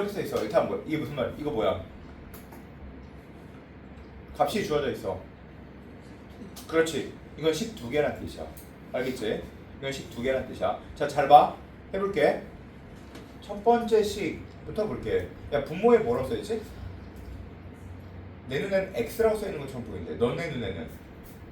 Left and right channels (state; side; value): identical; both; correlation 1.00